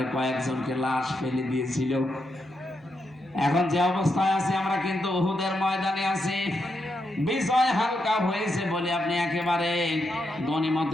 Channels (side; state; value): both; normal; correlation 0.83